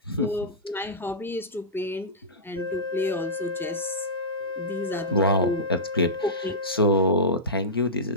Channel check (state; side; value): normal; both; correlation -0.16